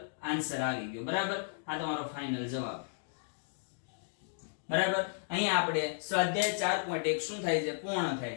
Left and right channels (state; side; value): silent; right; digital silence